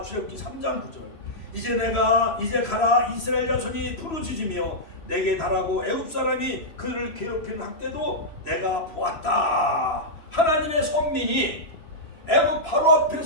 출애굽기 3장 9절. 이제 가라. 이스라엘 자손이 부르짖으며 내게 달하고 애굽 사람이 그를 괴롭히는 학대도 내가 보았다. 하나님의 선민이 애굽 바로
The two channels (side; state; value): right; late; 3.0 ms